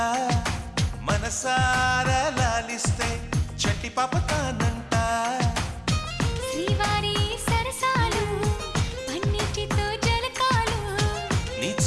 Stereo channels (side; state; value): both; identical; correlation 1.00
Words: మనసారా లాలిస్తే చట్టి పాపతానంట శ్రీవారి సరసాలు పన్నిటితో జలకాలు నీ